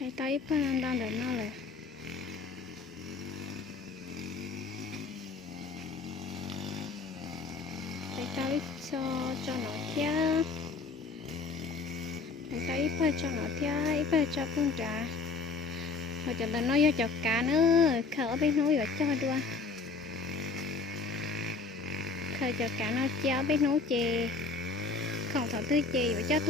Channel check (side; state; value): right; quieter; 4.3 dB